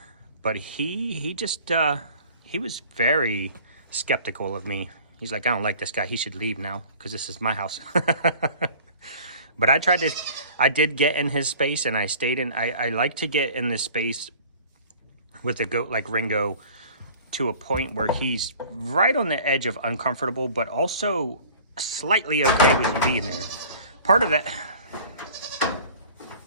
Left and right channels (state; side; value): inverted; both; correlation -0.47